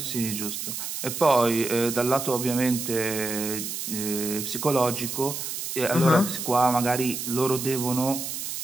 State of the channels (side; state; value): right; noise; hiss, 5 dB below the sound